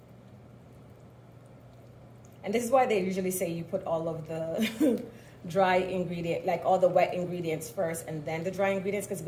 And this is why they usually say you put all of the dry ingredient, like all the wet ingredients first and then the dry ingredients, because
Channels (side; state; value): both; identical; correlation 1.00